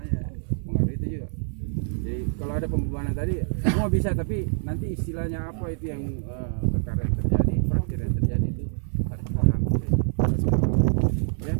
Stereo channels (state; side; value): silent; left; 58 dB below the other